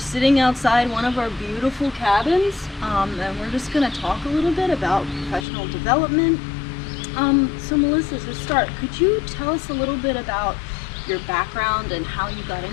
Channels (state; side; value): drops out; right; at 5.5 s